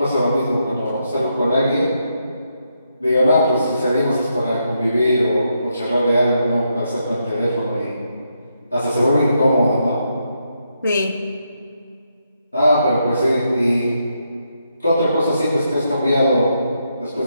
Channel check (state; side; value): inverted; both; correlation -0.80